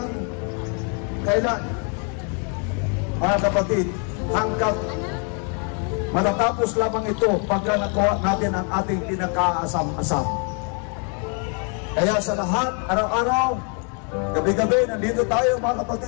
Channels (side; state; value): right; quieter; 39.3 dB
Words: kailan? Mga kapatid, hanggang matatapos lamang ito pagka nakuha natin ang ating pinakaasam-asam. Kaya sa lahat, araw-araw, gabi-gabi, nandito tayo mga